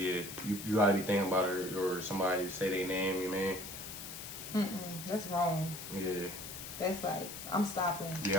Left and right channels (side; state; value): left; noise; hiss, 10 dB below the sound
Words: gotta be thinking about it, or somebody say their name. You mean? That's wrong. Yeah. That's like I'm stopping.